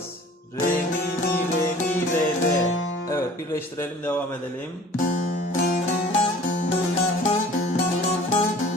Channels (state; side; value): normal; both; correlation 0.48